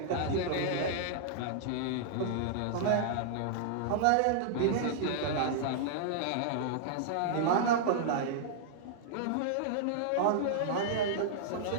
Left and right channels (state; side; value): different; both; correlation -0.01